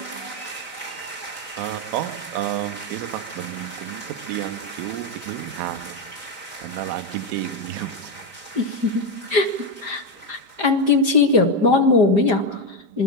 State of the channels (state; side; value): late; left; 5.0 ms